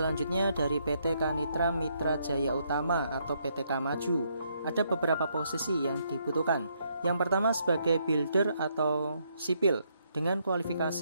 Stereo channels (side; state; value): both; inverted; correlation -0.74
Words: dari PT Kanitra Mitra Jaya Utama atau PTK Maju. Ada beberapa posisi yang dibutuhkan. Yang pertama sebagai builder atau sipil dengan